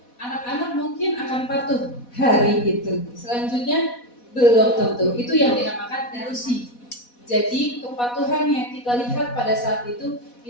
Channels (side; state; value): right; late; 4.1 ms